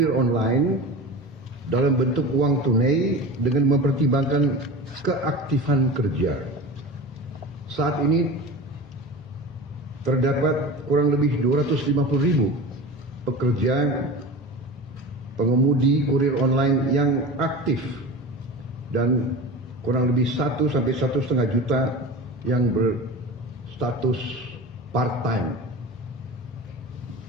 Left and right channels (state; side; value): normal; both; correlation 0.32